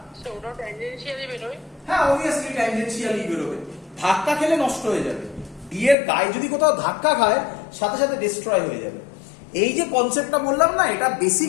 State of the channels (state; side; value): drops out; right; at 6.0 s